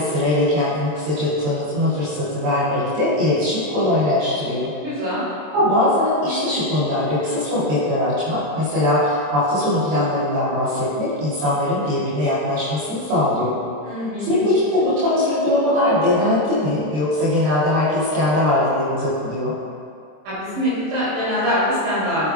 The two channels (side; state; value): left; late; 27 ms